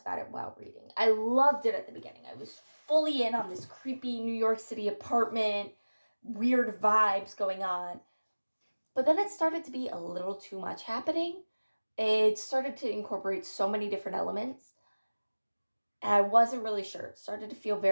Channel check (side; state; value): both; inverted; correlation -1.00